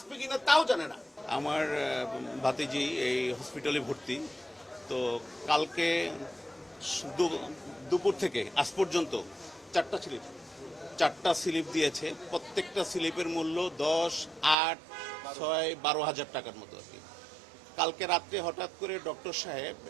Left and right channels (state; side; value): drops out; left; at 14.6 s